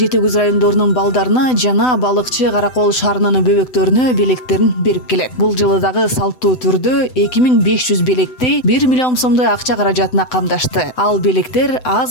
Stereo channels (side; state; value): right; late; 7.9 ms